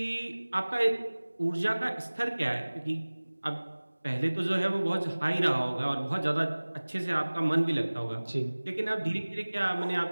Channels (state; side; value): inverted; both; correlation -1.00